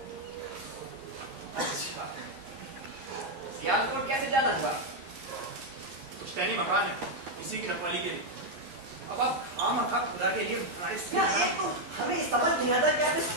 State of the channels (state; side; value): late; left; 11 ms